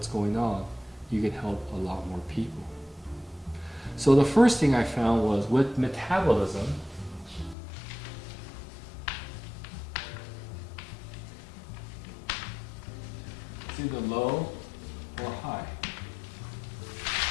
going on, you can help a lot more people. So the first thing I found was with metabolism, it's either low or high.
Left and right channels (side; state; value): right; drops out; at 7.6 s